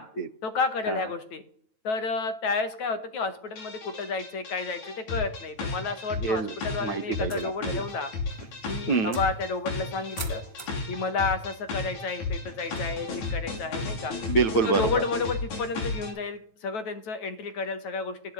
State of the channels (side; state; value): right; late; 9.2 ms